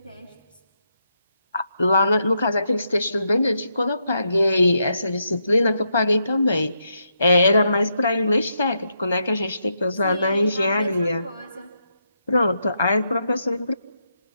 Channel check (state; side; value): inverted; both; correlation -0.81